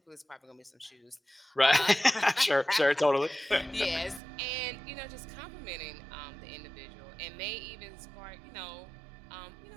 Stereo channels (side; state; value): left; drops out; at 4.2 s